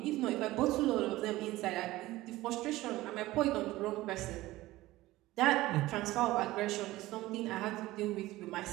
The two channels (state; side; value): quieter; left; 17.6 dB